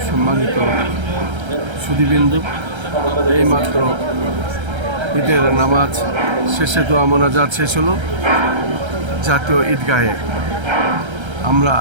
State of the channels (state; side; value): late; left; 1.3 ms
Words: সম্মানিত সুধীবৃন্দু, এইমাত্র ঈদের নামাজ শেষে দোয়া মোনাজাত শেষ হলো জাতীয় ঈদগাহে। আমরা